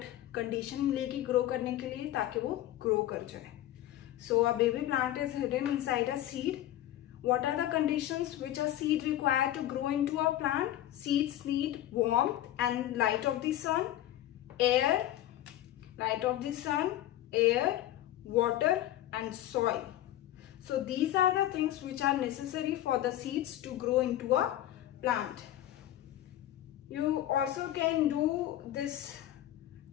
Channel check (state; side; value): quieter; right; 13.3 dB